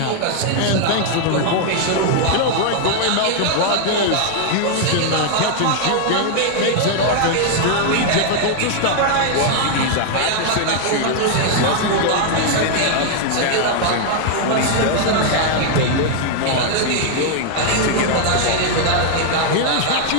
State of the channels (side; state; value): both; different; correlation 0.00